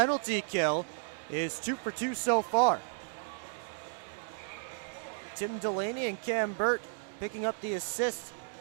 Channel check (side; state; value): left; silent; digital silence